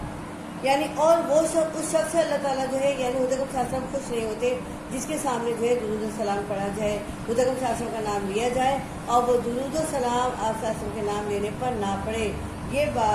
یعنی اور وہ شخص اس شخص سے اللہ تعالیٰ جو ہے یعنی حضرت صلی اللہ علیہ وسلم خوش نہیں ہوتے جس کے سامنے جو ہے درود و سلام پڑھا جائے، حضرت صلی اللہ علیہ وسلم کا نام لیا جائے اور وہ درود و سلام آپ صلی اللہ علیہ وسلم کے نام لینے پر نہ پڑھے۔ یہ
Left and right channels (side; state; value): both; identical; correlation 1.00